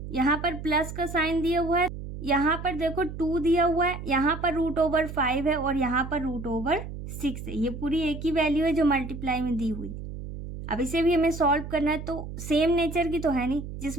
यहाँ पर प्लस का साइन दिया हुआ है, यहाँ पर देखो 2 दिया हुआ है, यहाँ पर √5 है और यहाँ पर √6 है। ये पूरी एक ही वैल्यू है जो मल्टीप्लाई में दी हुई। अब इसे भी हमें सॉल्व करना है, तो सेम नेचर की तो है नहीं।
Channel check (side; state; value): right; noise; hum, 9 dB below the sound